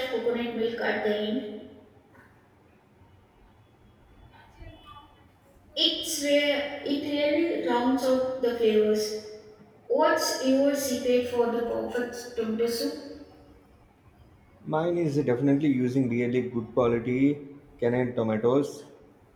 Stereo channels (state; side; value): identical; both; correlation 1.00